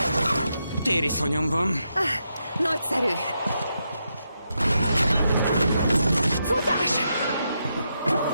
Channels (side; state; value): both; inverted; correlation -0.83